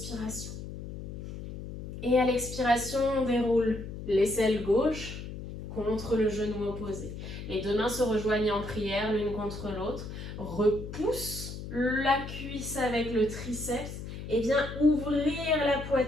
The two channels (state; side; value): noise; left; hum, 9 dB below the sound